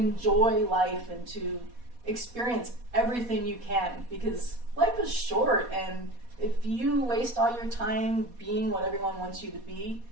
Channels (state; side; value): late; left; 4.2 ms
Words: life and to experience everything you can, because life is short, and if you waste all your time being what everyone wants you to be,